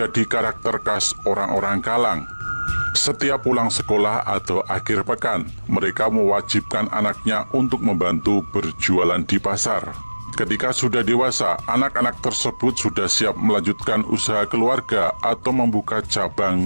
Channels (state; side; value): inverted; both; correlation -1.00